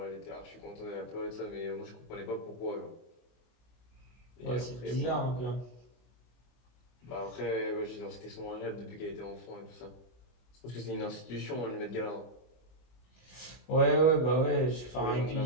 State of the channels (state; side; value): late; right; 25 ms